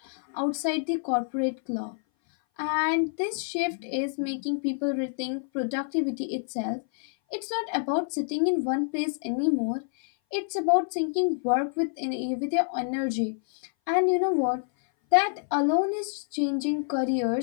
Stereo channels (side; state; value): right; silent; 58 dB below the other